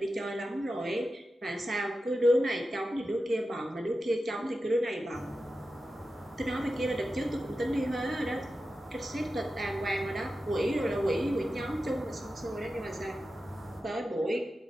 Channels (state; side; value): normal; both; correlation 0.92